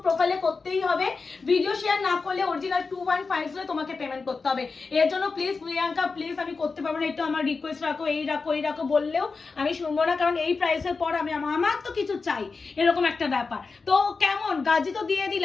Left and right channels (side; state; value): right; quieter; 4.4 dB